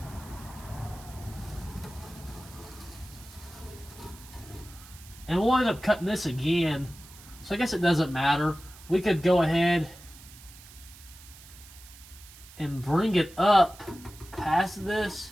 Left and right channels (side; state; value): right; noise; hiss, 20 dB below the sound